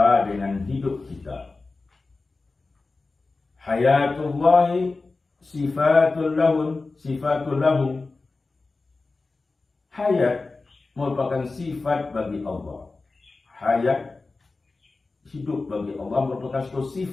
dengan hidup kita. Hayatullahi sifatul lahu. Hayat merupakan sifat bagi Allah. Hayat, hidup bagi Allah, merupakan suatu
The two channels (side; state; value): right; quieter; 3.7 dB